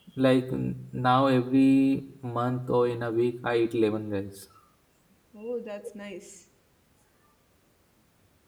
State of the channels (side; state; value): both; identical; correlation 1.00